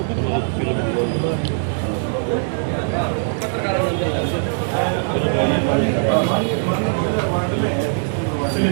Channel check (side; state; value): left; silent; digital silence